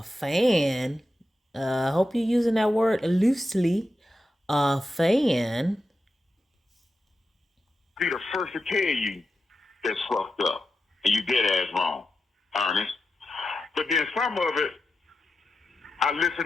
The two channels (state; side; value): normal; both; correlation 0.89